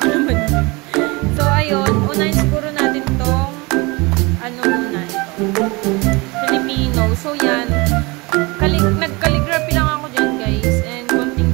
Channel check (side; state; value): left; quieter; 25.7 dB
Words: ko naman yun. So ayun, unahin siguro natin tong muna ito, Filipino. So yan, nag-calligraphy lang ako dyan guys, and konting